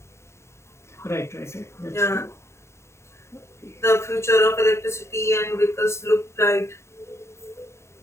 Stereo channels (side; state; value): right; late; 0.13 ms